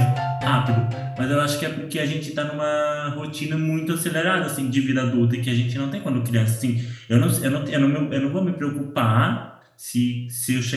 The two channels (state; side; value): identical; both; correlation 1.00